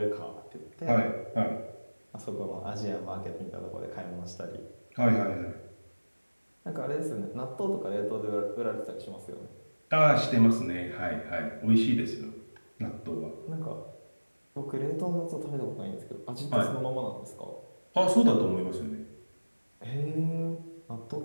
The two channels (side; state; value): both; inverted; correlation -1.00